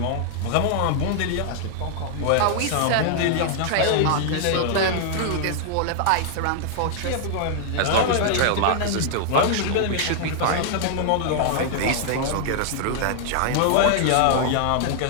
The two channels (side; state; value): both; different; correlation -0.01